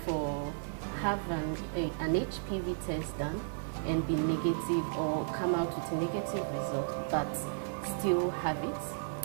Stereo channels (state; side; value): silent; left; 55 dB below the other